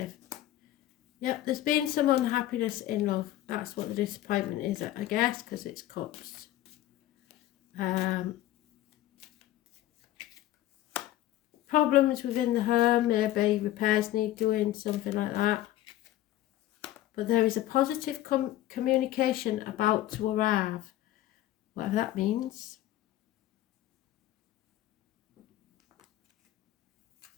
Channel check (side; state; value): right; quieter; 14.1 dB